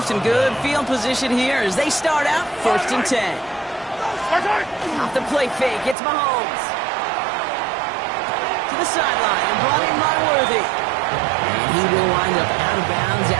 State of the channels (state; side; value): drops out; left; at 6.0 s